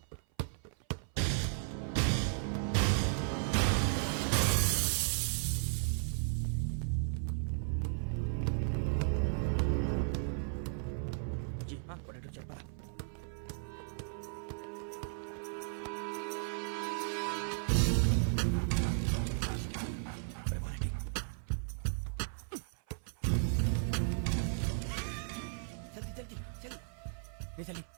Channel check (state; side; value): silent; left; 54 dB below the other